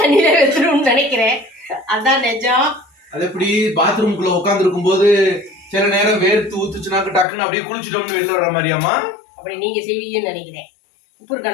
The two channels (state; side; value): drops out; right; at 7.2 s